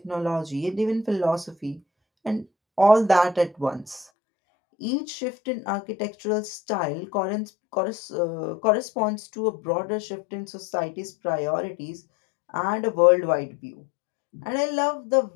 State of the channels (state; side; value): drops out; right; at 4.0 s